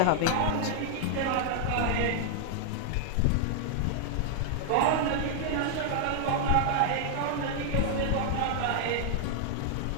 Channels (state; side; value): different; both; correlation 0.00